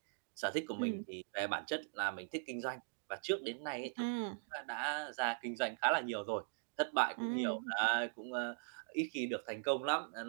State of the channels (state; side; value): silent; left; digital silence